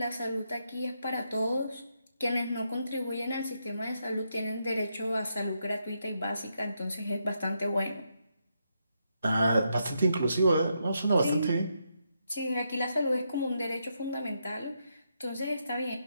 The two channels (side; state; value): both; inverted; correlation -0.81